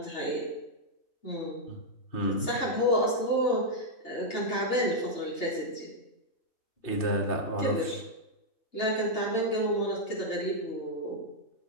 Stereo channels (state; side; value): late; right; 3.3 ms